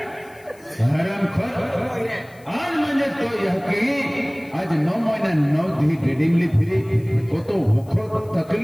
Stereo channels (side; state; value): left; noise; hiss, 29 dB below the sound